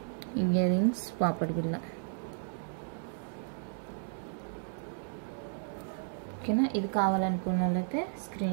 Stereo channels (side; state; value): left; silent; digital silence